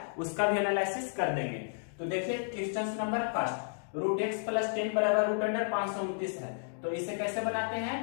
उसका भी एनालिसिस कर देंगे। तो देखिए, question number first, root x plus 10 बराबर रूट अंडर 529 है। तो इसे कैसे बनाते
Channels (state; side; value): silent; right; digital silence